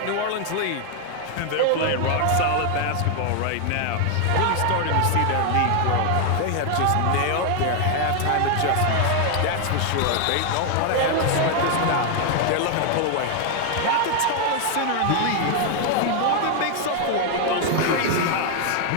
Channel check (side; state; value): both; different; correlation 0.00